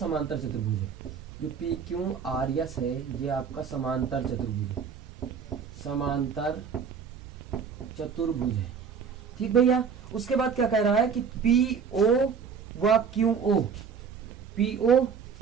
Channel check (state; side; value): quieter; left; 6.4 dB